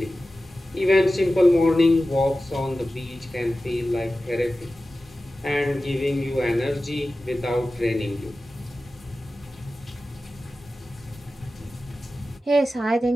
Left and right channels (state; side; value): normal; both; correlation 0.95